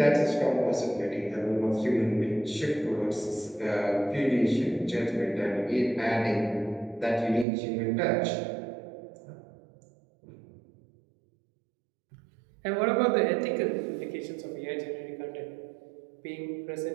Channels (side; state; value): left; drops out; at 7.5 s